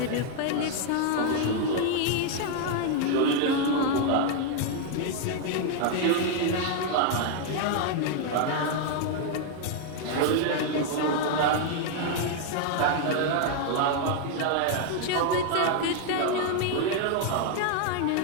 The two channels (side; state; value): both; different; correlation 0.00